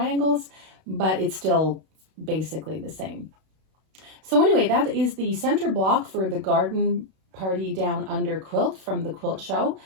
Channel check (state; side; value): late; left; 32 ms